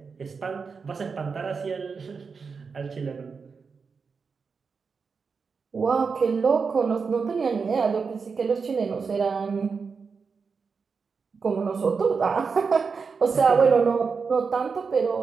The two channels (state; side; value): quieter; left; 5.3 dB